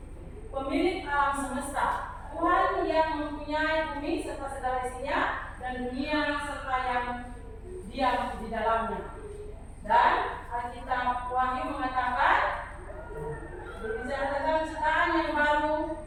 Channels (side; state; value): both; identical; correlation 1.00